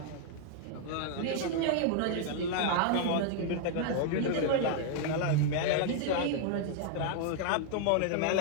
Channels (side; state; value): both; different; correlation 0.00